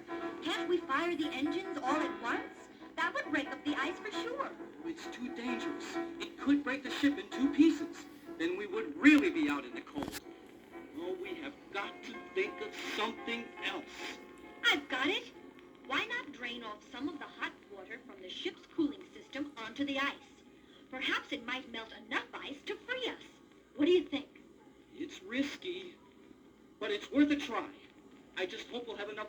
Can't we fire the engines all at once? That would break up the ice for sure. It's too dangerous. It could break the ship in two pieces. Then we would really be out in the cold. Oh, we have got to think of something else. I've got it. Why not drain off some of the hot water from the ship's cooling system onto the ice? Perhaps it might melt enough ice to free us. What do you think? It's risky, but it's worth a try. I just hope we'll have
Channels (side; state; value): both; identical; correlation 1.00